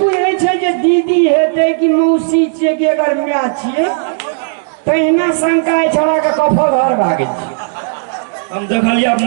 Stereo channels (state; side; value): silent; left; digital silence